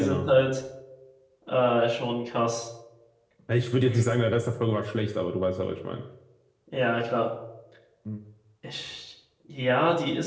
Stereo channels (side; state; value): both; identical; correlation 1.00